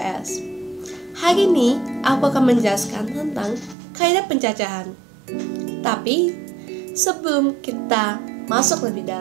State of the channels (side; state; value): left; drops out; at 3.8 s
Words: Hari ini aku akan menjelaskan tentang kaidah pencacahan. Tapi sebelum kita masuk lebih